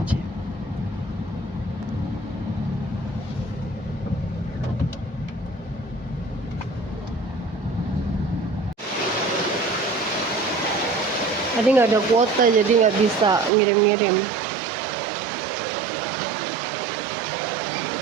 Tadi nggak ada kuota jadi nggak bisa ngirim-ngirim.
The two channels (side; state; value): left; drops out; at 13.5 s